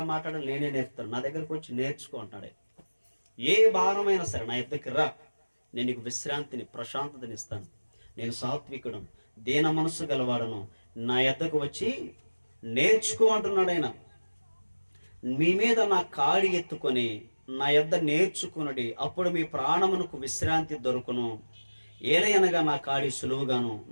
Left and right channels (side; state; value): both; inverted; correlation -1.00